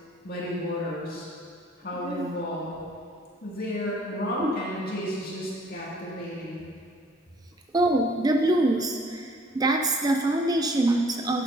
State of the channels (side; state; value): both; normal; correlation 0.58